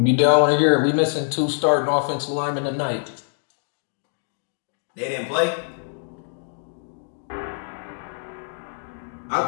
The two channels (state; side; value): silent; right; 63 dB below the other